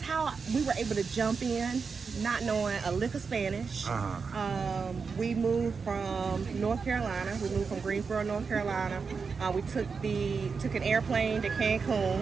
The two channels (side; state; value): left; quieter; 5.2 dB